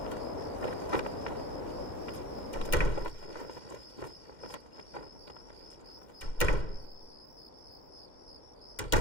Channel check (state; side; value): late; right; 2.1 ms